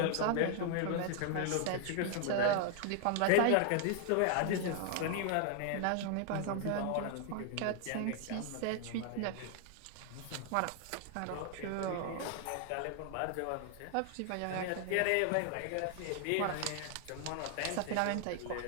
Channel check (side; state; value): both; different; correlation 0.00